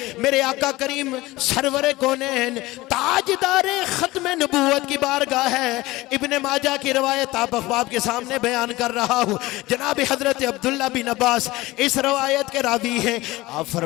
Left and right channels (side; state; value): right; quieter; 19.3 dB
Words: मेरे आका करीम सरवरे कौनैन ताजदारे खत्म नबूवत की बारगाह है। इब्ने माजा की रवायत आप अखबाब के सामने बयान कर रहा हूँ। जनाब हजरत अब्दुल्ला बिन अब्बास इस रवायत के रावी हैं। आप